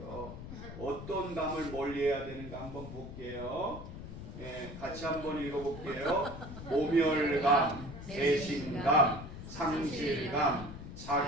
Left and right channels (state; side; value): noise; left; rumble, 11 dB below the sound